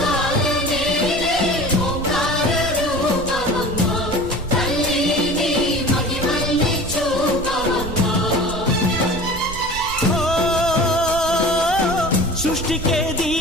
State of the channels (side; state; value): right; noise; rumble, 11 dB below the sound